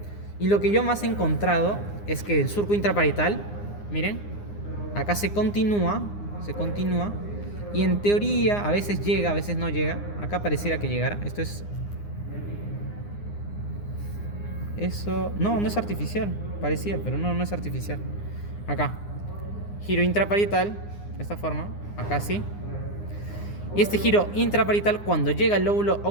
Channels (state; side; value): late; right; 9.8 ms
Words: Y lo que yo más he encontrado es que el surco intraparietal, miren, acá se continúa, y en teoría a veces llega, a veces no llega. Acá pareciera que llegara. Esto es... Eso... No es artificial. Parecía, pero no es artificial. Acá. Giro intraparietal, de esta forma. Acá sí. Y este giro intraparietal, cuando llega al lóbulo